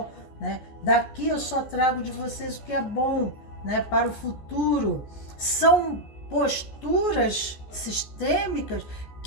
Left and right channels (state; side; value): late; right; 14 ms